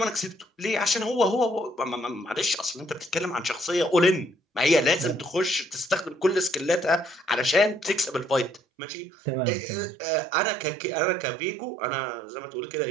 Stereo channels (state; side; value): drops out; left; at 8.6 s